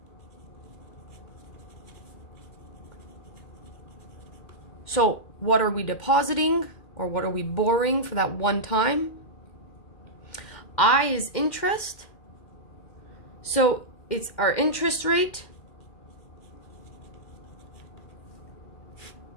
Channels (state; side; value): late; right; 2.1 ms